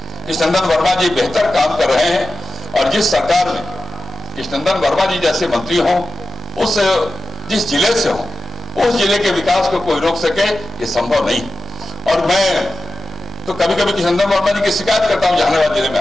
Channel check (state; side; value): normal; both; correlation 0.93